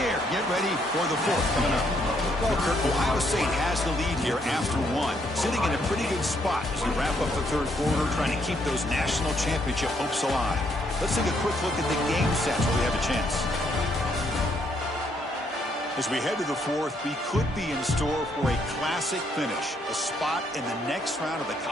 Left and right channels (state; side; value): normal; both; correlation 0.72